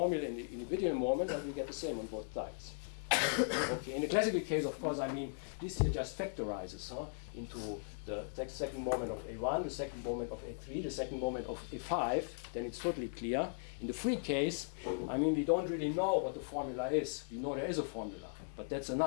in the individual moment, I will get the same on both sides. Okay, in the classical case, of course, I mean, this here just factorizes into the second moment of A1, the second moment of A3, the second moment of A5, then it's totally clear. In the free case, I mean, we don't really know what the formula is. We know there is a formula, but that's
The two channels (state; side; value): silent; right; digital silence